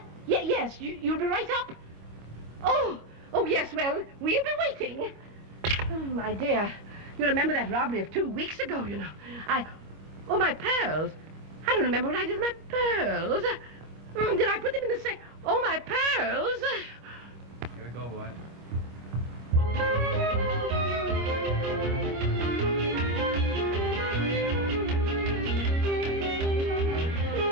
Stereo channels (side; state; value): left; late; 25 ms